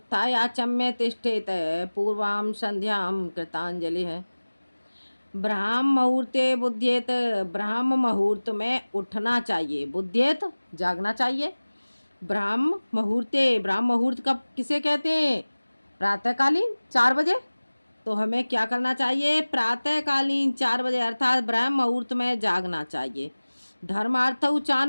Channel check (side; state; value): both; inverted; correlation -1.00